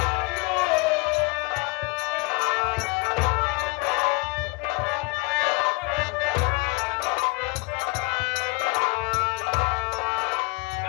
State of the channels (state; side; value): quieter; right; 27.0 dB